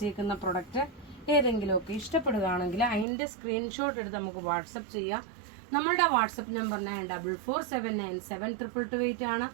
പ്രൊഡക്റ്റ് ഏതെങ്കിലുമൊക്കെ ഇഷ്ടപ്പെടുകയാണെങ്കിൽ അതിന്റെ സ്ക്രീൻഷോട്ട് എടുത്ത് നമുക്ക് വാട്സപ്പ് ചെയ്യാം. നമ്മളുടെ വാട്സപ്പ് നമ്പർ 9447972228 ആണ്.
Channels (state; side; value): drops out; left; at 3.1 s